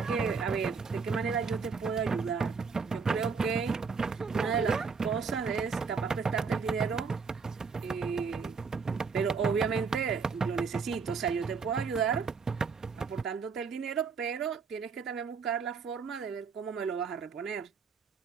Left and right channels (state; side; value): quieter; left; 5.3 dB